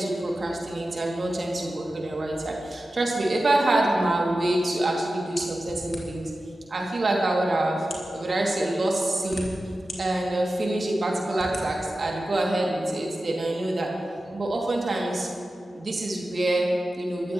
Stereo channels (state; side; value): normal; both; correlation 0.94